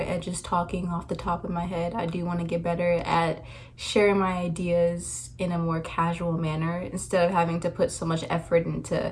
just talking off the top of my head. I do want to get better at sharing my ideas in a more casual manner instead of having to put so much effort into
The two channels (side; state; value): both; identical; correlation 1.00